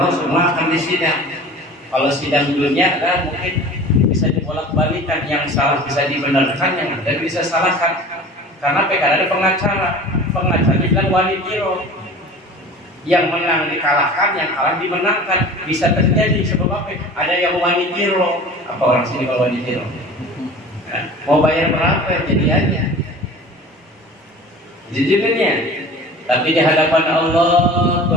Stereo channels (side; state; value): both; normal; correlation 0.40